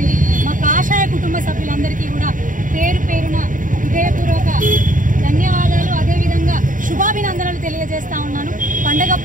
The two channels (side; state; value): left; late; 0.38 ms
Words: మా కాషాయ కుటుంబ సభ్యులందరికీ కూడా పేరు పేరున హృదయపూర్వక ధన్యవాదాలు, అదేవిధంగా శుభాభినందనలు తెలియజేస్తా ఉన్నాను. పండగ